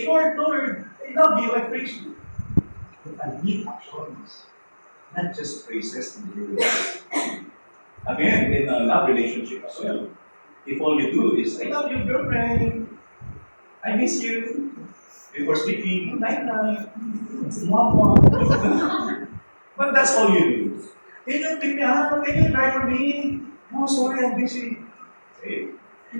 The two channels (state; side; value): inverted; both; correlation -1.00